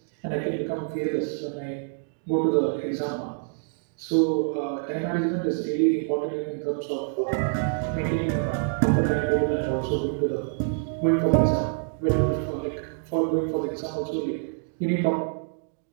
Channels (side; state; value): left; silent; digital silence